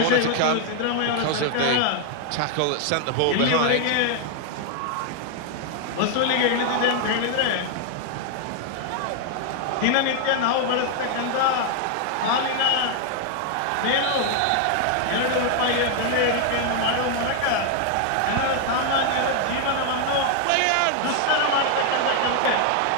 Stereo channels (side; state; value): both; different; correlation 0.00